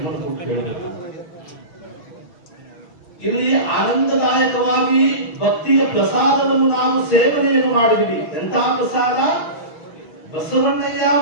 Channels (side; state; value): right; late; 6.1 ms